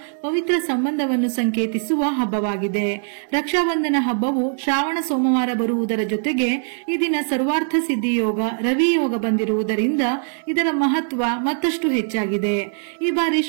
ಪವಿತ್ರ ಸಂಬಂಧವನ್ನು ಸಂಕೇತಿಸುವ ಹಬ್ಬವಾಗಿದೆ. ರಕ್ಷಾಬಂಧನ ಹಬ್ಬವು ಶ್ರಾವಣ ಸೋಮವಾರ ಬರುವುದರ ಜೊತೆಗೆ ಈ ದಿನ ಸರ್ವಾರ್ಥ ಸಿದ್ಧಿ ಯೋಗ ರವಿ ಯೋಗ ಬಂದಿರುವುದರಿಂದ ಇದರ ಮಹತ್ವ ಮತ್ತಷ್ಟು ಹೆಚ್ಚಾಗಿದೆ. ಈ ಬಾರಿ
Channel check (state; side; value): silent; left; 65 dB below the other